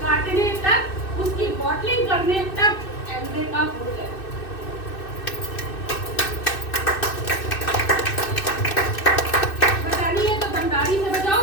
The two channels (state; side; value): late; right; 2.6 ms